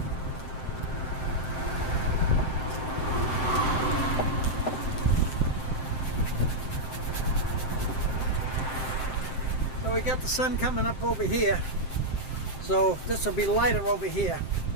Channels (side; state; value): right; late; 7.6 ms